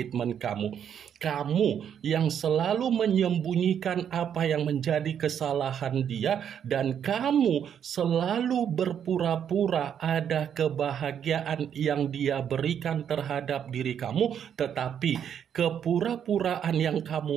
kamu. Kamu yang selalu menyembunyikan apa yang menjadi kesalahan dia, dan kamu selalu berpura-pura ada kebahagiaan yang dia berikan terhadap diri kamu, tetapi kepura-puraan yang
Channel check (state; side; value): quieter; left; 8.7 dB